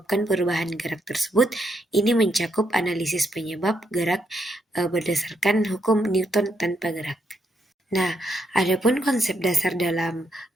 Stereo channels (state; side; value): normal; both; correlation 0.77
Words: perubahan gerak tersebut. Ini mencakup analisis penyebab gerak berdasarkan hukum Newton tanpa gerak. Nah, adapun konsep dasar dalam